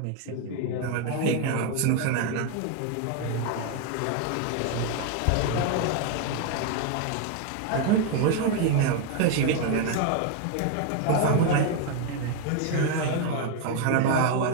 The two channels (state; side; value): different; both; correlation 0.01